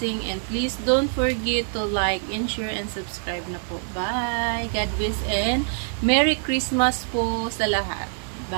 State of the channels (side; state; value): left; silent; 59 dB below the other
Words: and please don't forget to like and share and subscribe na po. Bye! God bless and Merry Christmas po sa lahat.